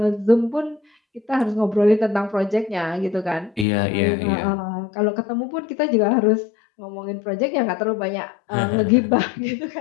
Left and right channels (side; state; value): right; drops out; at 3.7 s